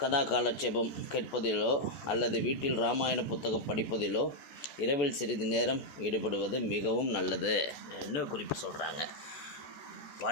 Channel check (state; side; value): late; right; 14 ms